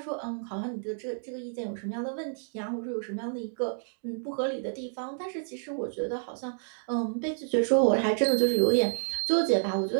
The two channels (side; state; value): left; silent; digital silence